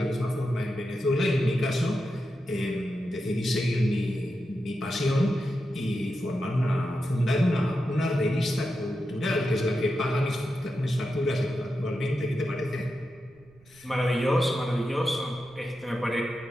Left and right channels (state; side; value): noise; right; rumble, 28 dB below the sound